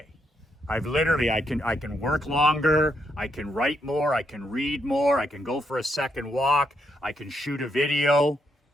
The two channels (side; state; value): both; normal; correlation 0.77